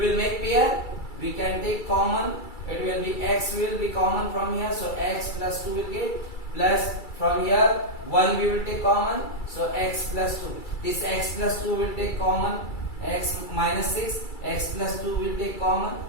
make pair, we can take common, it will be x will be common from here, so x plus 2 will get, plus from here 1 we will take common, so x plus 2. This x plus 2 will take common, x minus 6, x plus 2 will take common.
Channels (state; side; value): late; right; 2.3 ms